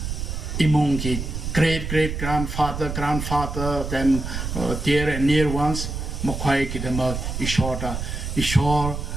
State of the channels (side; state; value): right; noise; rumble, 5 dB below the sound